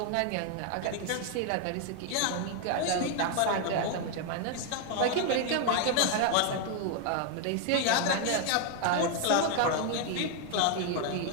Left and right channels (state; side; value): different; both; correlation 0.00